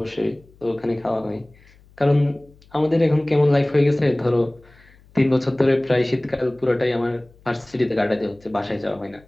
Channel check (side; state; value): left; noise; hum, 28 dB below the sound